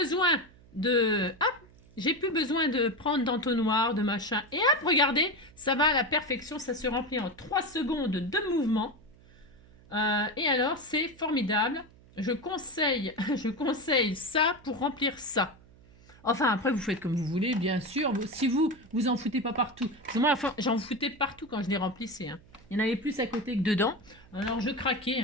de... Hop! J'ai plus besoin de prendre d'entonnoir, de machin. Et hop, regardez, ça va à la perfection. Ça se remplit en 3 secondes de mouvement. Et alors, c'est formidable. Je conseille ça pour remplir ça. Enfin, après, vous faites comme vous voulez, bien sûr. Si vous en foutez pas partout. Parce que moi, enfin, j'en foutais partout quand je les remplissais. Hein. Il y en avait plus à côté que dedans. Alors, je craquais.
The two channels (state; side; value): noise; right; hum, 25 dB below the sound